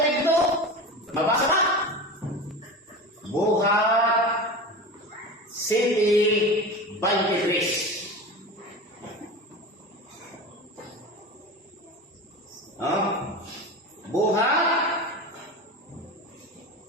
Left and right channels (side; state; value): both; normal; correlation 0.29